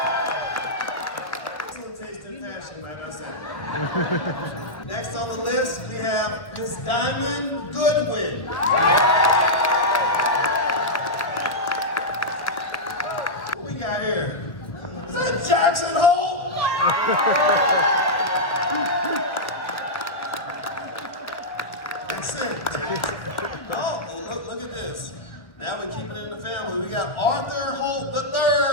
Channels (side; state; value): right; late; 1.3 ms